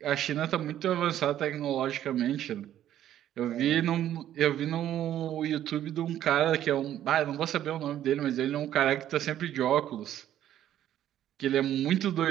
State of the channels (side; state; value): left; quieter; 11.6 dB